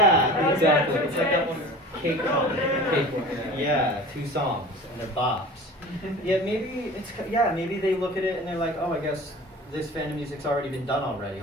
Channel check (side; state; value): both; normal; correlation 0.39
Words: exactly. It's like that one cake yeah, 2 songs and they're bops. Yeah, maybe they look at it and they're like, oh, I guess this fandom music's already been done already.